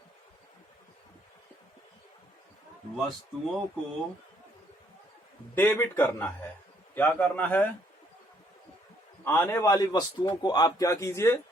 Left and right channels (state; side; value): normal; both; correlation 0.68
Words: डेबिट करना है। क्या करना है? आने वाली वस्तुओं को आप क्या कीजिए?